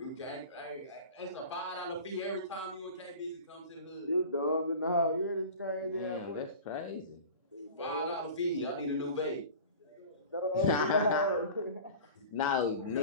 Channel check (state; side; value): inverted; both; correlation -0.37